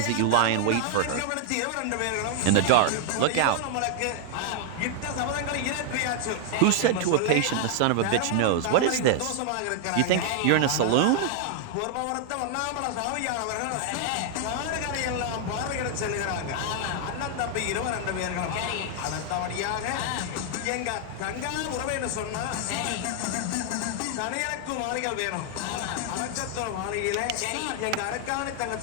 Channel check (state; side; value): different; both; correlation 0.00